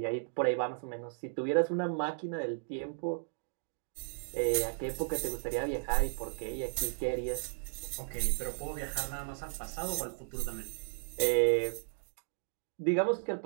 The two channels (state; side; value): silent; left; digital silence